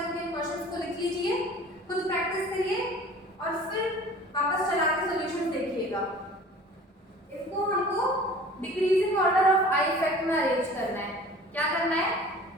क्वेश्चंस को लिख लीजिए, खुद प्रैक्टिस करिए और फिर वापस चला के सॉल्यूशन देखिएगा। इसको हमको decreasing order of I effect में अरेंज करना है। क्या करना है,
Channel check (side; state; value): both; normal; correlation 0.45